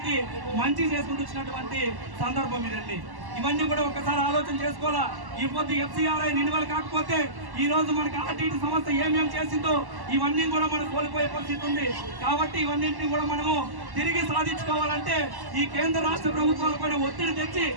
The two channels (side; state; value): left; late; 1.1 ms